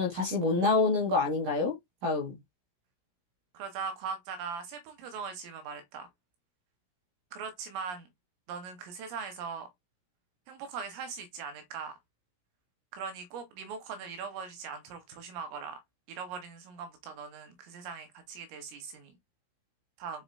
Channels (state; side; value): late; left; 17 ms